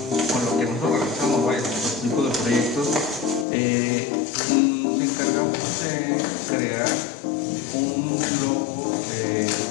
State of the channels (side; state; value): right; drops out; at 3.5 s